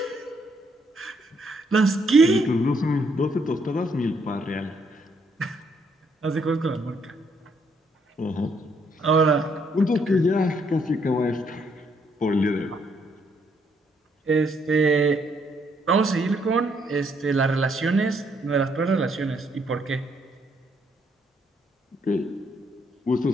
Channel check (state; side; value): normal; both; correlation 0.71